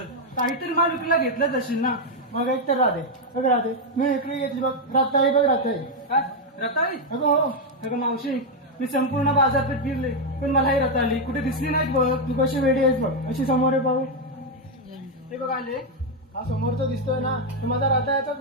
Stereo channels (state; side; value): normal; both; correlation 0.02